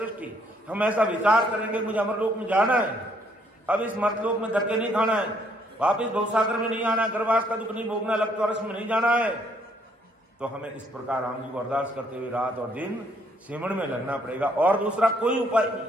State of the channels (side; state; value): both; normal; correlation 0.68